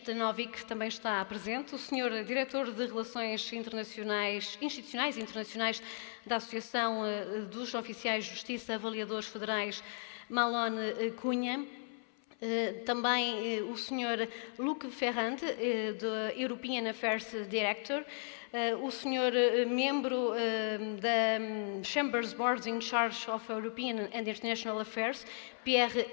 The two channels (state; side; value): silent; right; 54 dB below the other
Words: também está presente, o Sr. Diretor de Relações Institucionais e Internacionais da Associação dos Oficiais de Justiça Avaliadores Federais, Malone Cunha, também o Sr. Luc Ferrand, do European Affairs Director, o Sr. Membro da Chambers Board in Charge of European and International Affairs, Pierre